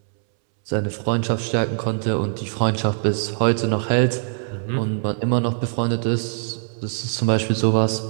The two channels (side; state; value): left; silent; 64 dB below the other